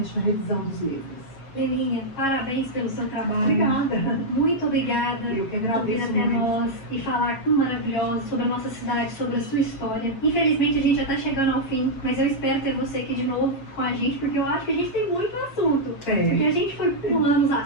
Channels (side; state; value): right; late; 7.3 ms